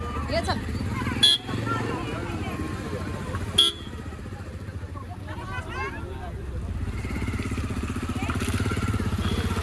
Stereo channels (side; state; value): both; identical; correlation 1.00